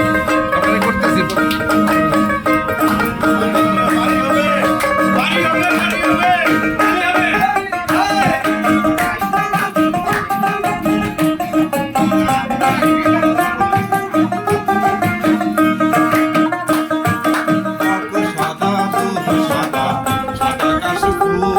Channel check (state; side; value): identical; both; correlation 1.00